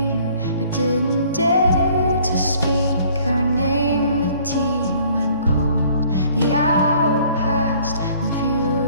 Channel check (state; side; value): inverted; both; correlation -0.57